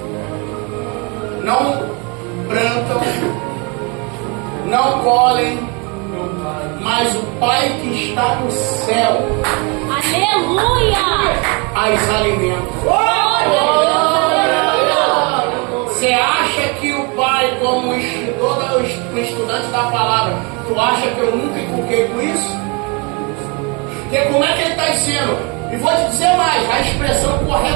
Não plantam, não colhem, mas o Pai que está no céu Aleluia! as alimenta. Você acha que o Pai, como estudante da palavra, tu acha que eu nunca inculquei com isso? Porque como é que ele está dizendo? E vou te dizer mais, a expressão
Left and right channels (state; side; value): quieter; left; 31.2 dB